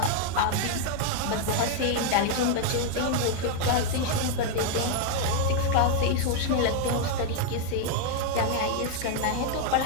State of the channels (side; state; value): both; different; correlation 0.00